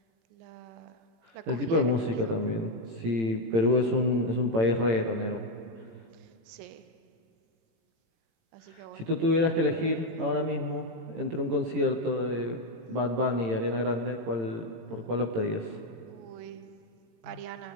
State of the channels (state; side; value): late; left; 18 ms